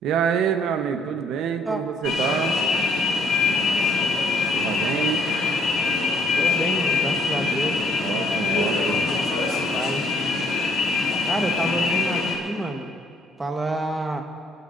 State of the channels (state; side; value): normal; both; correlation 0.64